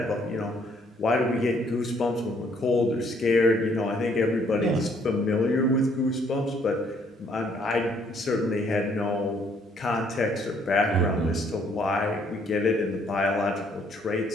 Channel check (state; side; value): normal; both; correlation 0.66